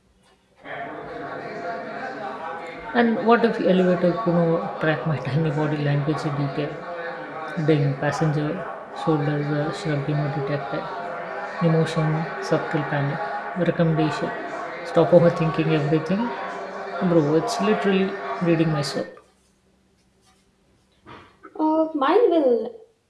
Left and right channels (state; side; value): identical; both; correlation 1.00